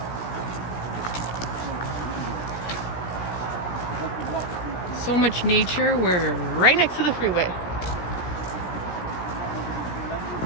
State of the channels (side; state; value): right; late; 17 ms